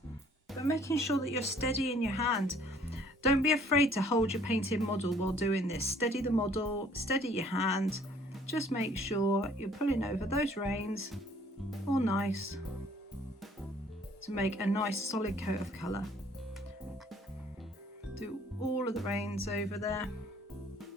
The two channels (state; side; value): normal; both; correlation 0.58